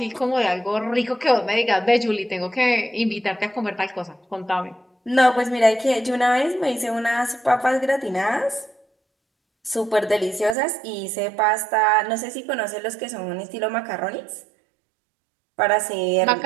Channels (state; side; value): drops out; left; at 10.6 s